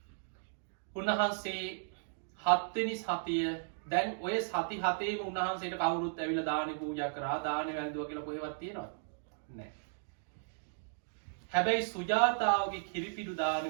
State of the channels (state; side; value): silent; left; digital silence